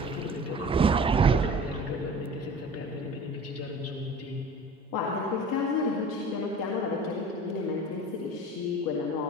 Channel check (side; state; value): both; normal; correlation 0.41